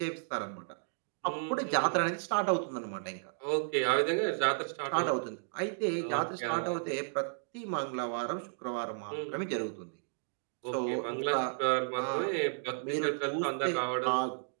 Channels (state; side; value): silent; left; digital silence